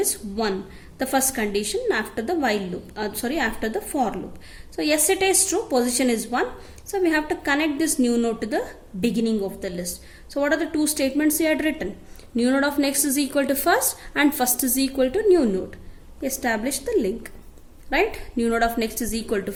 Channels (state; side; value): identical; both; correlation 1.00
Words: 1, the first condition after the while loop, after the for loop. So yes, it is true, position is 1, so we have to connect this new node to the beginning of the list. So what are the two statements we had written? New node of next is equal to first and first is equal to new node. Establish the link, right? New node of next is equal to